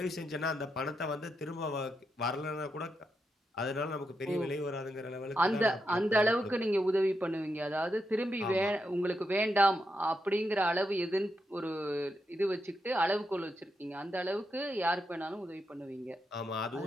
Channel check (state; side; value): normal; both; correlation 0.84